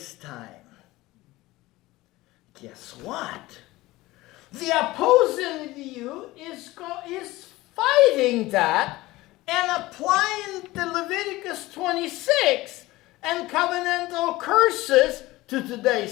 time. Guess what? The opposing view is fighting that and applying the Leviticus 26 and covenantal curses to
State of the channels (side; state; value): right; quieter; 18.9 dB